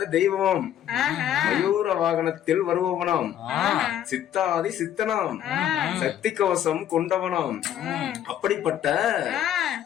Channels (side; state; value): right; quieter; 10.8 dB